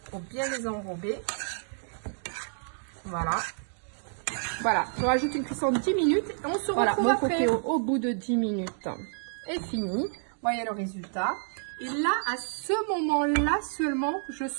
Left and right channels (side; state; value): left; silent; 58 dB below the other